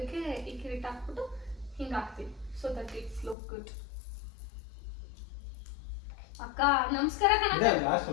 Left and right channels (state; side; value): drops out; right; at 3.4 s